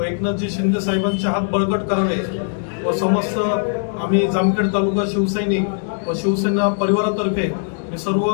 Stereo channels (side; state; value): right; silent; digital silence